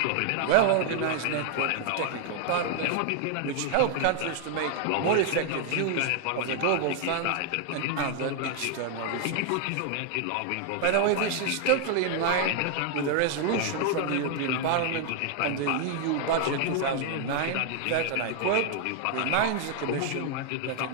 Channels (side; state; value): both; different; correlation 0.00